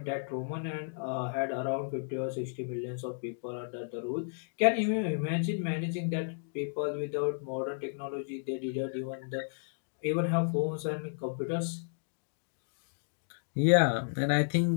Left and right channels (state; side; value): silent; right; digital silence